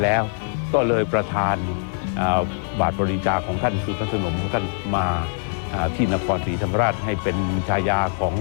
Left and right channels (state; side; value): silent; right; digital silence